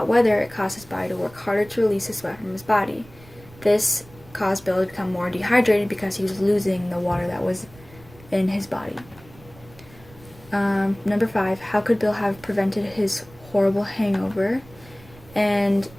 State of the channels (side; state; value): right; noise; rumble, 23 dB below the sound